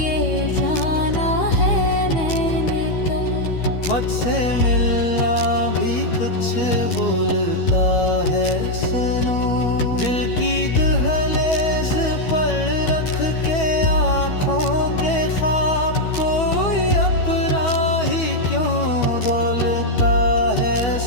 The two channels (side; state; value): right; late; 12 ms